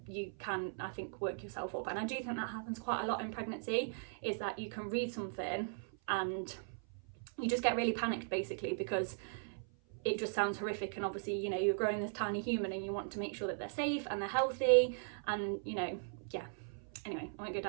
you can, I think, work yourself up, and I do think that happens quite a lot in pregnancy, is that you can read something and you just get really panicked basically, because it just sounds horrific, and obviously, you know, you're growing this tiny human and you want to make sure that they're safe and they're healthy, and you know, yeah. Anyway, I won't go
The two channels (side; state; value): left; silent; 52 dB below the other